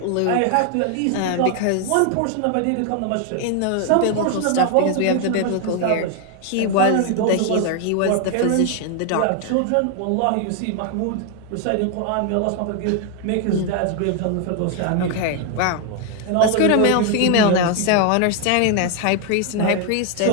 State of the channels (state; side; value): different; both; correlation 0.00